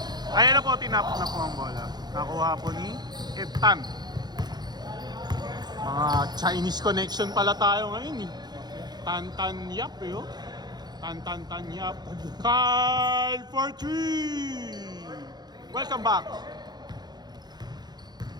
Ayan na po, tinapos na po ang bola. Nakuha po ni Eptan. Mga Chinese connection pala tayo ngayon eh. Tan Yap eh oh. Tan Yap. Carl for 3. Welcome back.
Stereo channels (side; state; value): left; late; 0.20 ms